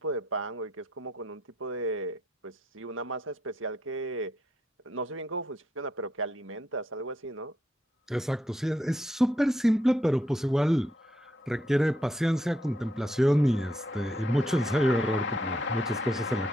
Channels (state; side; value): normal; both; correlation 0.77